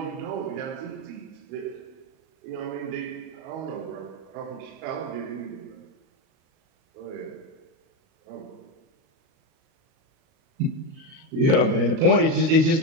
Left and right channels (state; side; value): late; left; 37 ms